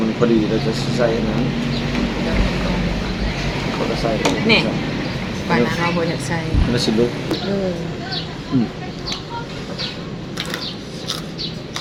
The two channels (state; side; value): identical; both; correlation 1.00